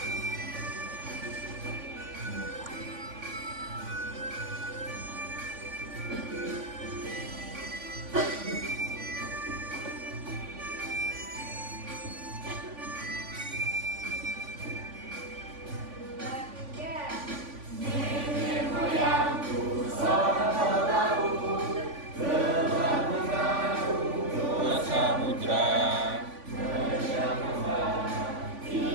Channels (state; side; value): late; left; 3.5 ms